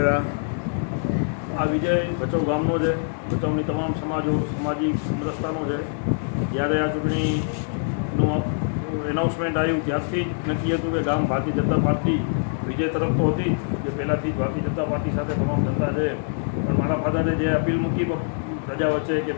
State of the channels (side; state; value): right; silent; digital silence